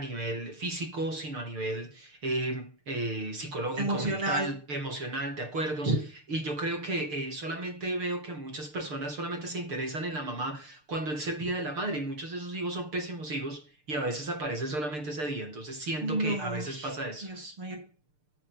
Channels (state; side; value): late; left; 6.7 ms